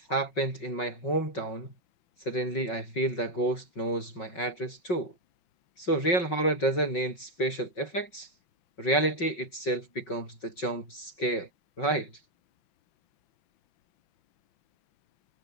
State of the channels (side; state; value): right; late; 5.4 ms